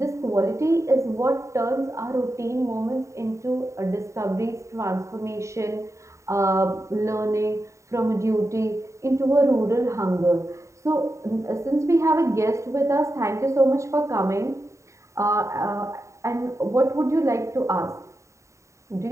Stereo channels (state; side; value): late; left; 0.14 ms